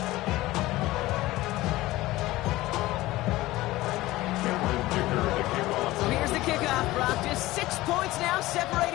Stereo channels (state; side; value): quieter; right; 17.9 dB